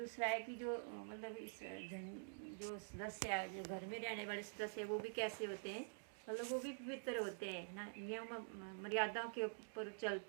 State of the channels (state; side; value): silent; left; digital silence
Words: है कि जो मतलब इस जो सदस्य, जो घर में रहने वाले सदस्य, वो भी कैसे होते हैं? मतलब वो भी पवित्र होते हैं ना, नियम मर्यादाओं के ऊपर